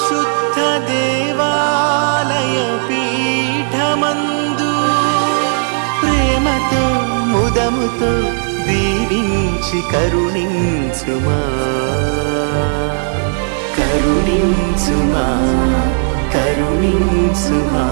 దేవాలయ పీఠమందు ప్రేమతో ముదముతో దీవించి కరుణించుమా కరుణించుమా కరుణించుమా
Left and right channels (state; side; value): silent; left; 70 dB below the other